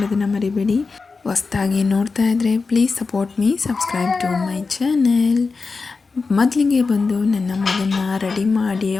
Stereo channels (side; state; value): right; quieter; 4.4 dB